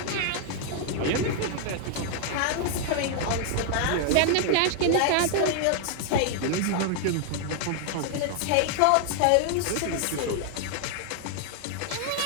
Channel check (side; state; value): both; different; correlation 0.00